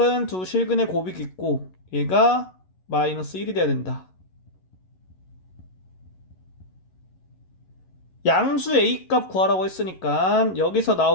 두 실근의 곱이겠고 얘가 마이너스 1이 돼야 된다. 양수 a 값 구하라고 했으니까 여기서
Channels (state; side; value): late; right; 11 ms